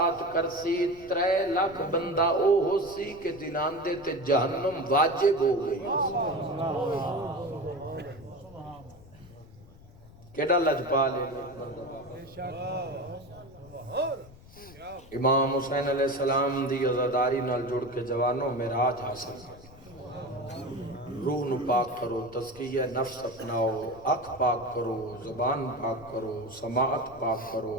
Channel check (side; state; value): left; noise; rumble, 21 dB below the sound